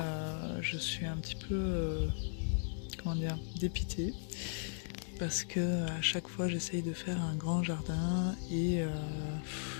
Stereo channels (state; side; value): silent; right; digital silence